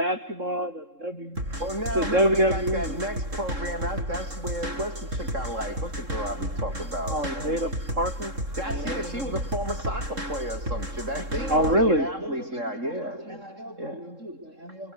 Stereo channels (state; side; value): late; left; 3.7 ms